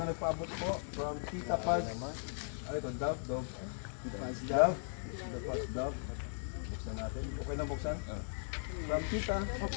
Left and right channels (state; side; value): silent; right; 52 dB below the other